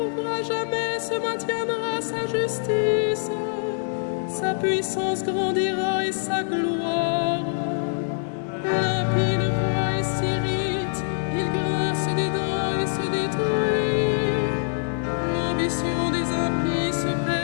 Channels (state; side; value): silent; right; digital silence